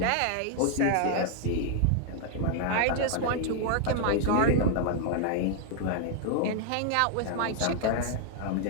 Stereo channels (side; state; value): both; different; correlation 0.00